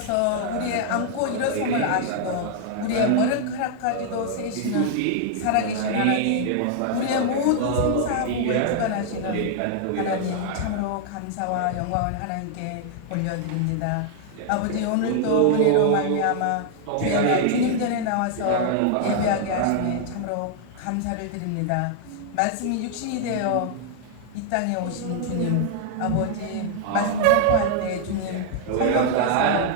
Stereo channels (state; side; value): different; both; correlation -0.01